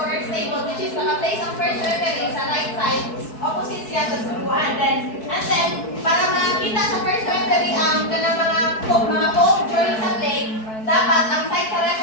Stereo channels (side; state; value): right; late; 4.6 ms